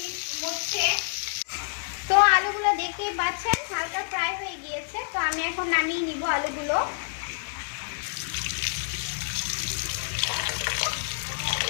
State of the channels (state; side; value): silent; right; digital silence